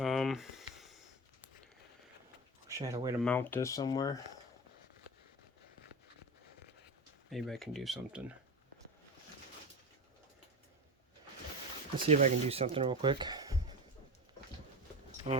wish I had a way to mount this somewhere. Maybe I can do something. Let's see if I can do something real quick.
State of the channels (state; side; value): normal; both; correlation 0.25